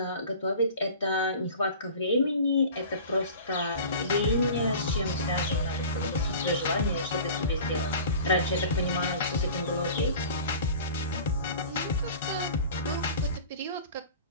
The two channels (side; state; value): both; inverted; correlation -0.40